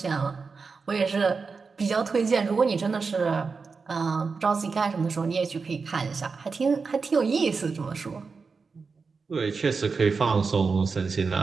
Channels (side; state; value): left; quieter; 4.8 dB